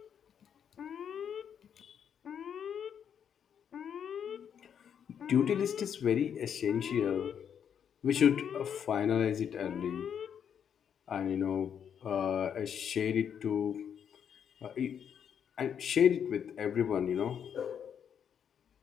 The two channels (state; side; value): quieter; right; 8.2 dB